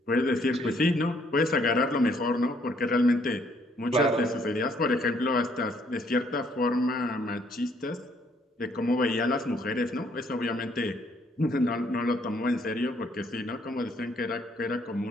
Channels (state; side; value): normal; both; correlation 0.67